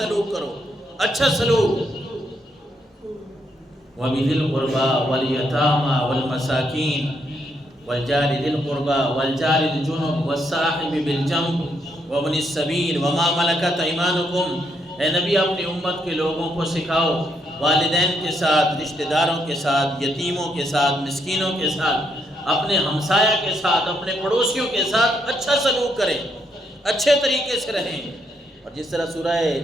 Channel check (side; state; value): both; normal; correlation 0.76